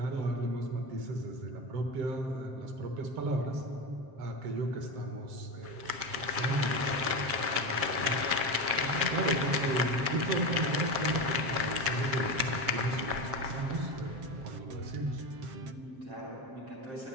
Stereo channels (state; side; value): late; left; 7.3 ms